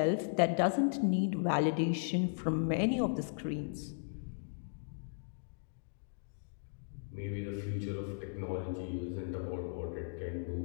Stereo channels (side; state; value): right; silent; digital silence